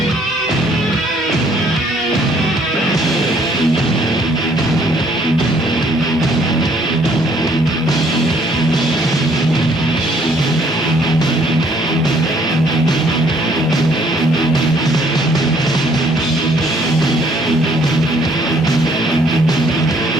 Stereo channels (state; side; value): normal; both; correlation 0.63